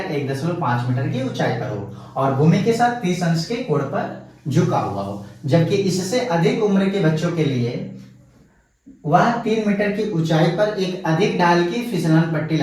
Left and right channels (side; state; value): both; identical; correlation 1.00